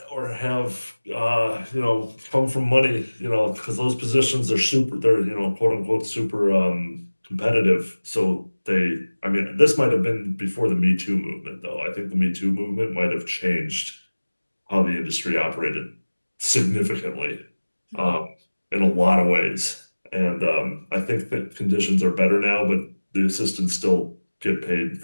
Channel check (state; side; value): inverted; both; correlation -1.00